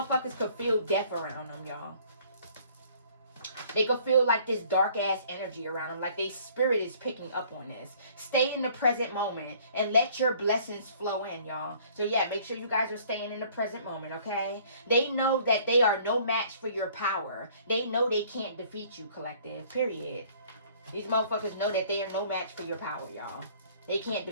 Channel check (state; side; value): inverted; both; correlation -0.56